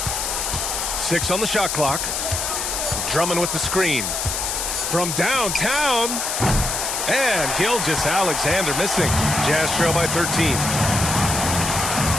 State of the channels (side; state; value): left; noise; hiss, 2 dB below the sound